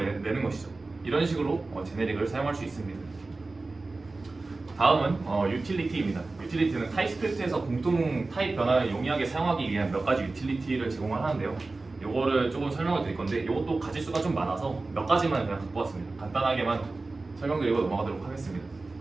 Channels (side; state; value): left; quieter; 3.5 dB